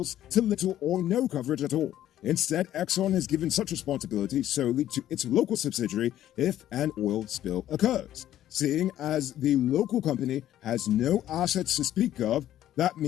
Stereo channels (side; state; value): right; quieter; 12.3 dB